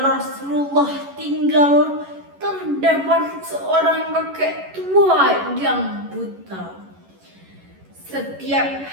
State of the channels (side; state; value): left; late; 11 ms